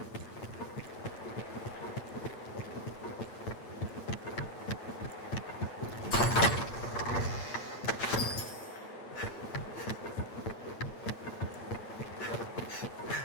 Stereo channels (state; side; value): late; right; 8.7 ms